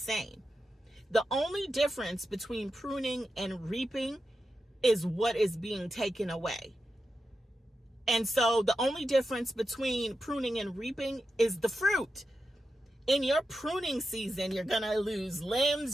The only difference between pruning and reaping is what is being taken away. And so the only difference between pruning and reaping is the fruit. In your pruning season, you're going to lose limbs.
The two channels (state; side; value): normal; both; correlation 0.89